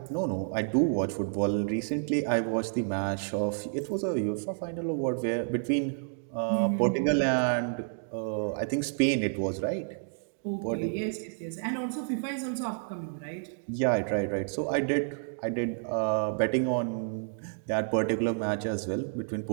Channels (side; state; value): left; silent; digital silence